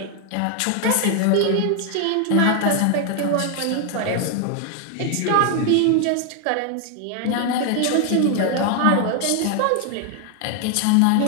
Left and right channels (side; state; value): both; different; correlation 0.00